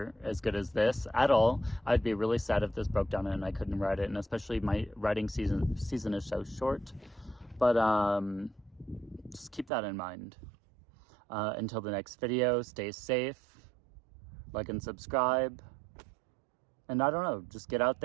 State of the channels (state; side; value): drops out; left; at 9.7 s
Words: as good as this at all. I'd be really sad if this broke down and I couldn't ride it, and especially my riding season is so short. But just keep that in mind. Until the next video, stay safe, like and subscribe, and I don't know, just get out